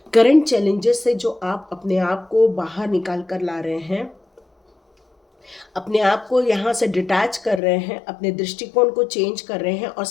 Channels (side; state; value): right; drops out; at 7.6 s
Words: करंट चैलेंजेस से जो आप अपने आप को बाहर निकाल कर ला रहे हैं, अपने आप को यहाँ से डिटैच कर रहे हैं, अपने दृष्टिकोण को चेंज कर रहे हैं और